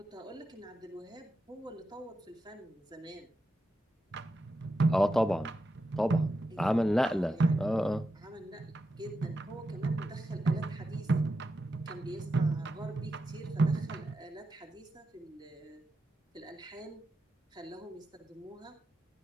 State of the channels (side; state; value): both; normal; correlation 0.88